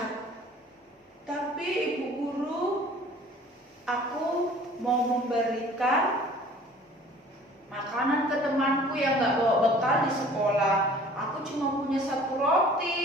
Tapi Ibu Guru, aku mau memberikan makanan ke temanku yang gak bawa bekal di sekolah. Aku cuma punya 1 roti.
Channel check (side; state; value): both; normal; correlation 0.50